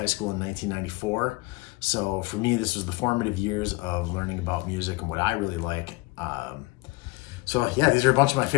school in 1994. So for me, this was the formative years of learning about music and what I really like. So yeah, these are a bunch of my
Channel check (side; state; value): right; quieter; 23.3 dB